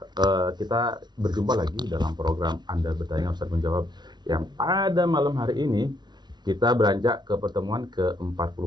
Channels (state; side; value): late; left; 0.20 ms